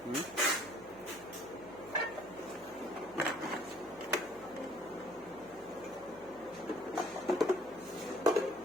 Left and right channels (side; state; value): right; noise; hum, 23 dB below the sound